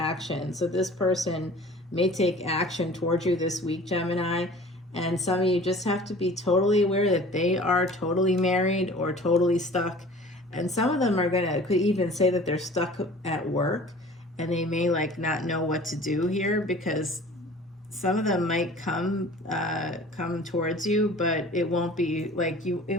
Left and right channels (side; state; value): both; normal; correlation 0.45